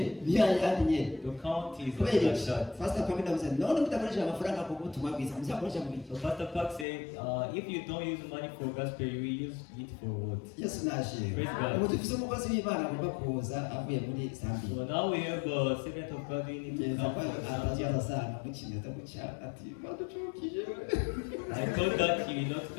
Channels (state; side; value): drops out; right; at 6.9 s